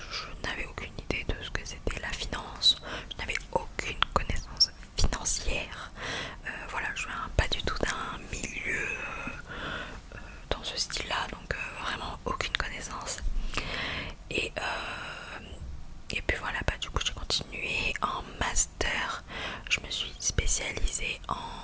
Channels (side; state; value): both; identical; correlation 1.00